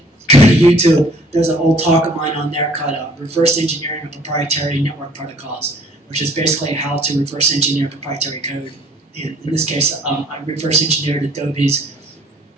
go to YouTube. There's an old talk of mine on there called Reverse Engineering of Proprietary Network Protocols, which is basically how to reverse engineer proprietary code. In this case, I reverse engineered Adobe's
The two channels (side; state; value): both; normal; correlation 0.56